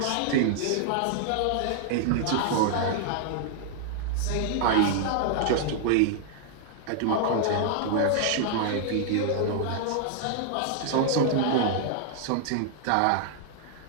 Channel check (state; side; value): different; both; correlation -0.01